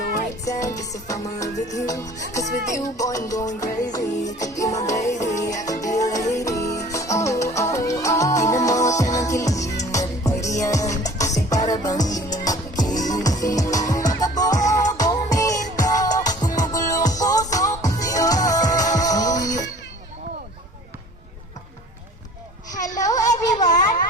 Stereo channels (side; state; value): both; normal; correlation 0.48